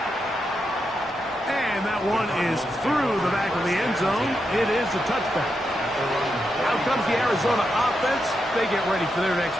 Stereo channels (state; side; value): normal; both; correlation 0.85